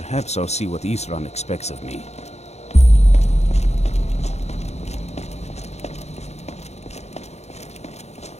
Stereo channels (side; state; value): right; late; 0.32 ms